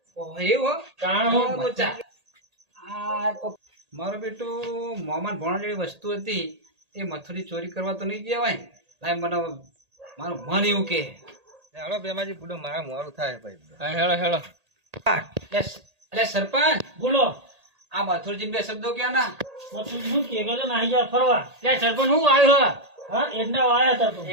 ઓહો, એવું હો? તાણ હું બોચા. આ મારો બેટો મોમાન ભણવા જેવી વસ્તુ હતી એ મથુરી ચોરી કરવા તો નહીં જવાય ને. લાય મને મારું મન એવું કે હેલો બેમાજી પૂડો મારા મોરું થાય ભાઈ. હેળો હેળો. અરે સરપંચ, બોલો આ મથુરજી બે શબ્દો ક્યાં ના? પથુજી શું કે ગયો નાહી જા ફરવા. ત્યાં સરપંચ હું આવ્યો હા એડના વાયા હતા તો.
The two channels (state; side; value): late; left; 1.8 ms